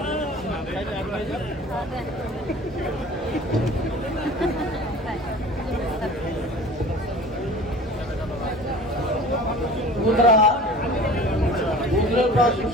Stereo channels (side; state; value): both; normal; correlation 0.42